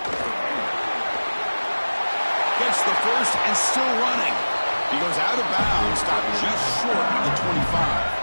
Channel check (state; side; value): inverted; both; correlation -1.00